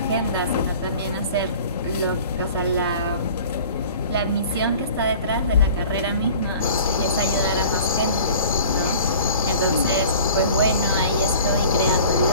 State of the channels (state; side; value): inverted; both; correlation -0.45